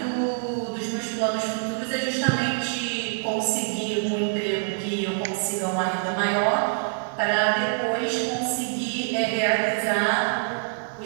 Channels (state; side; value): silent; left; digital silence